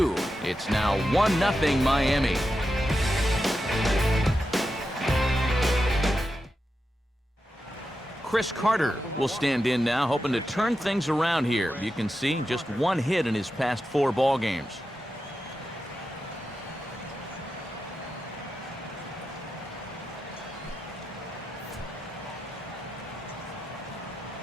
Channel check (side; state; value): both; normal; correlation 0.89